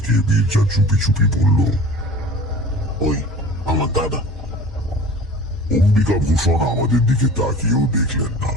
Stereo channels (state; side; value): normal; both; correlation 0.41